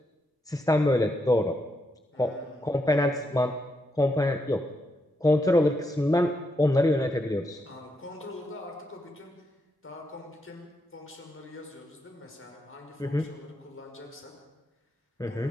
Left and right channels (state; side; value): normal; both; correlation 0.81